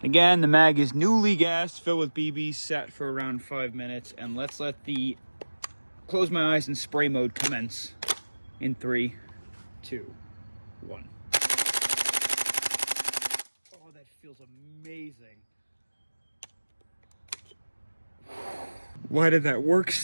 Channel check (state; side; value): inverted; both; correlation -1.00